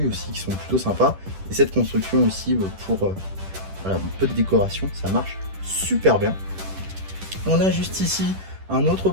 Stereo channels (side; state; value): left; late; 10 ms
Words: aussi qui sont plutôt sympas. Et cette construction aussi pour voilà, un peu de décoration, ça marche super bien. On a juste ici un autre